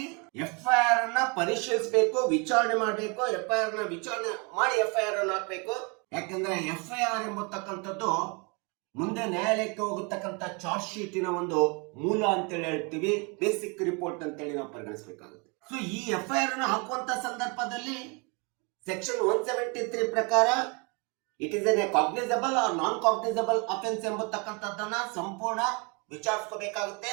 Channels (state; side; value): quieter; left; 31.8 dB